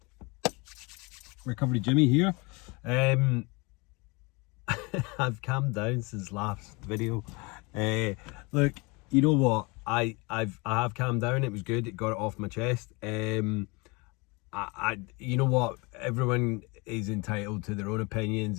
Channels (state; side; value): quieter; right; 27.6 dB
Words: Recovery Jimmy here. I've calmed down since last video. Look, you know what? I have calmed down. It was good. It got it off my chest. You know what? Everyone is entitled to their own